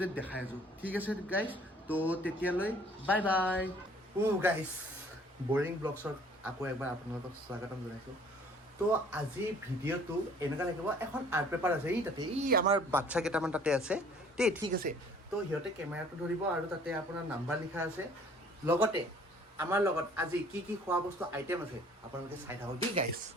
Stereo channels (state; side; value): normal; both; correlation 0.54